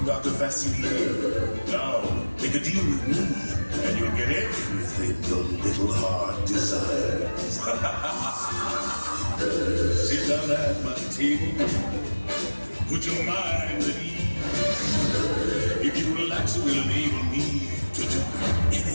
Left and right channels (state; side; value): inverted; both; correlation -1.00